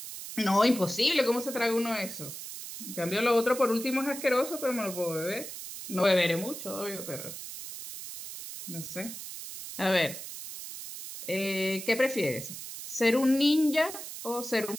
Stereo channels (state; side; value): noise; right; hiss, 10 dB below the sound